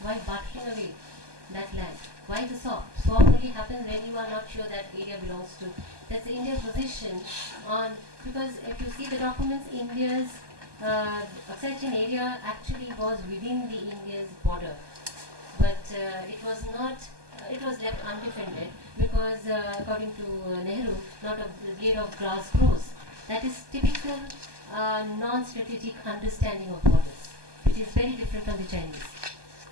Why bartering away that land? Why the swap? Swap only happens when you are not sure that area belongs to. That's the India's position on, because if you see the documents, India's Aksai area actually was within the India's border, but it was not. It was left undefended because, according to Nehru, not a blade of grass grows. That is typical non-strategic understanding of borders, which is very different from the Chinese.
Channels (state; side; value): late; left; 1.2 ms